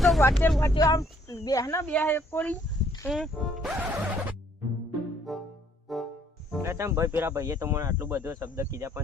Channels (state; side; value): normal; both; correlation 0.64